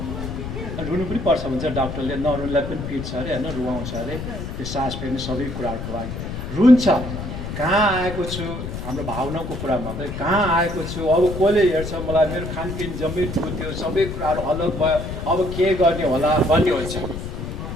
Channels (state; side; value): noise; left; rumble, 6 dB below the sound